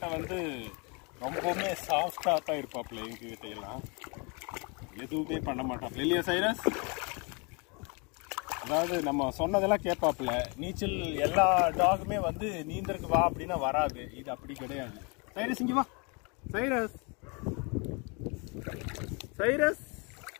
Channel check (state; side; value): quieter; right; 31.8 dB